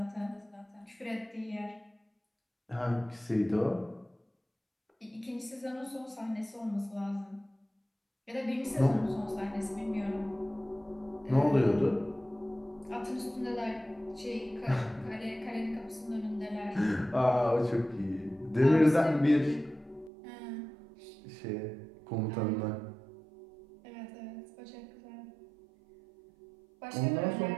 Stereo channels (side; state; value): left; drops out; at 20.1 s